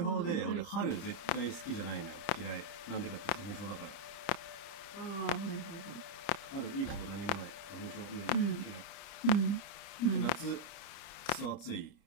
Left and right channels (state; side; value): late; right; 30 ms